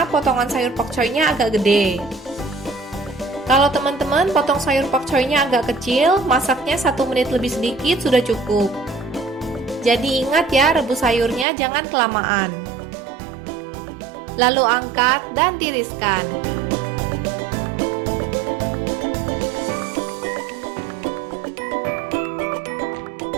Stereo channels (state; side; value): drops out; left; at 11.5 s